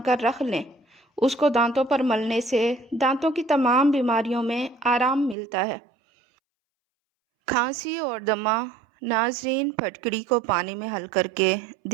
کر رکھ لیں، اس کو دانتوں پر ملنے سے دانتوں کی تمام بیماریوں میں آرام ملتا ہے۔ کھانسی اور دمہ، ناظرین پھٹکڑی کو پانی میں حل کر کے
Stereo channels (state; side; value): drops out; left; at 5.4 s